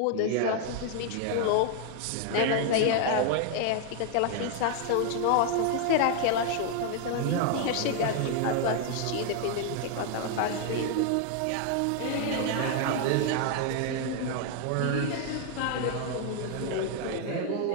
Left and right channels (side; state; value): both; different; correlation 0.00